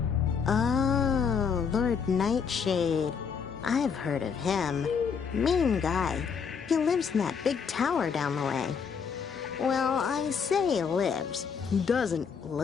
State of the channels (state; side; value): quieter; right; 6.3 dB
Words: Oh, Lord Nightshade. I've heard of him. Mean guy. He lives in that big tower down the way. Well, I say lives. Doesn't